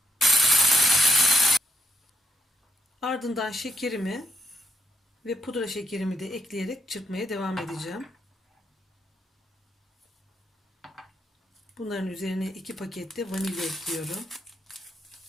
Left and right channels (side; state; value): both; normal; correlation 0.77